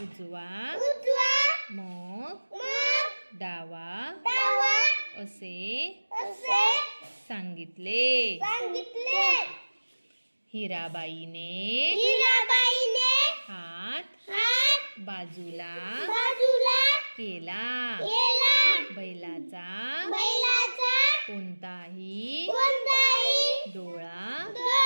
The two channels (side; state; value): both; inverted; correlation -1.00